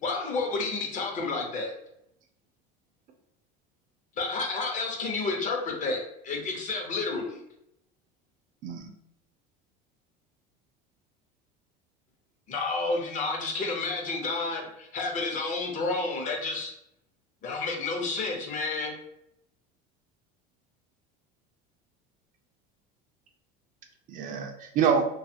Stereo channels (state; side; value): normal; both; correlation 0.17